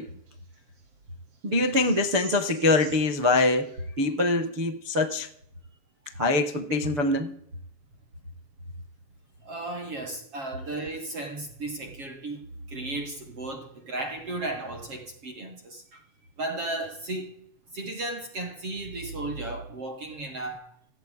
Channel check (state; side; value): late; left; 7.4 ms